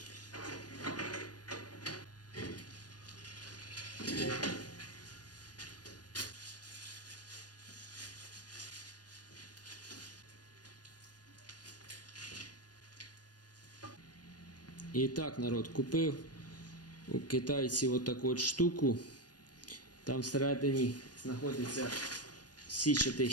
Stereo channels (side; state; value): right; late; 0.69 ms